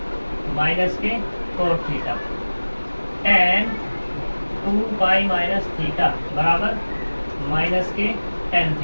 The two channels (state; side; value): inverted; both; correlation -1.00